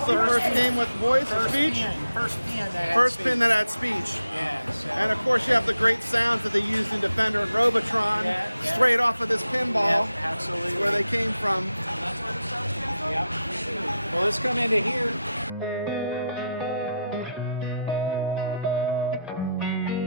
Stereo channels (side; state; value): both; inverted; correlation -0.85